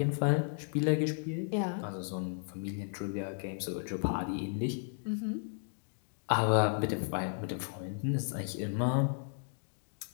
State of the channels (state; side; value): silent; right; digital silence